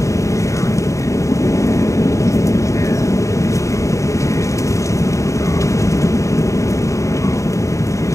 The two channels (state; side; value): late; right; 0.15 ms